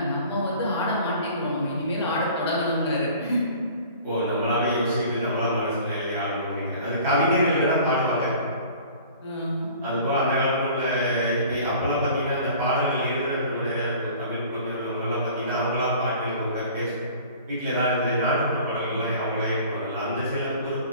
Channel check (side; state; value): both; inverted; correlation -0.46